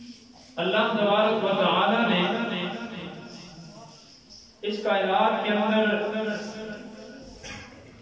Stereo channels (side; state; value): both; identical; correlation 1.00